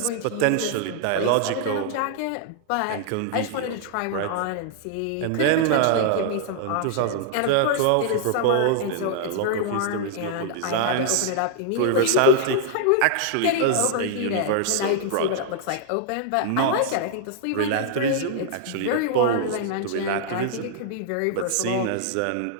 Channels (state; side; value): different; both; correlation 0.00